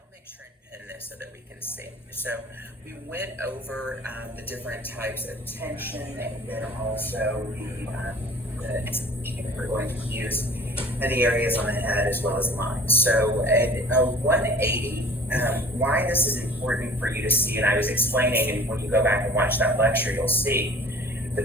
make sure and pin this so that we can see. So we went over the different types of tension, and then also we're going to use the areas on the head as well as lines. So at 180, why this is important for you to see, and I was explaining, and when you go back and watch that lecture, you'll see the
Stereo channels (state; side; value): normal; both; correlation 0.46